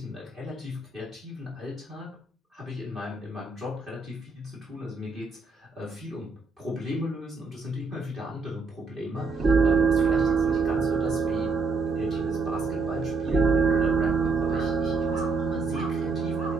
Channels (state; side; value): quieter; left; 4.0 dB